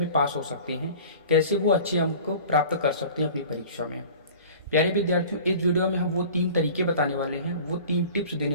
पास हो सकते हैं, कैसे वो अच्छे अंक को प्राप्त कर सकते हैं अपनी परीक्षा में। प्यारे विद्यार्थियों, इस वीडियो में हम वो 3 तरीके बताने वाले हैं, वो 3 टिप्स देने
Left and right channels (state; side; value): inverted; both; correlation -0.43